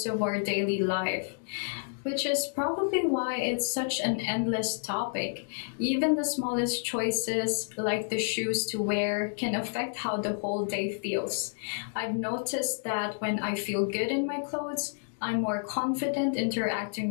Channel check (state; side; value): silent; right; digital silence